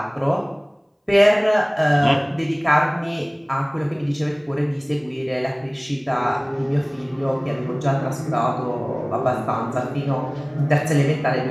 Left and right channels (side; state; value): both; identical; correlation 1.00